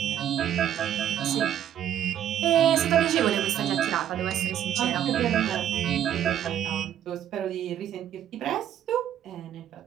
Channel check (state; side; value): quieter; left; 10.6 dB